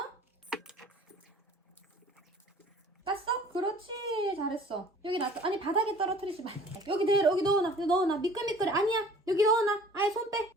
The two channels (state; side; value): normal; both; correlation 0.49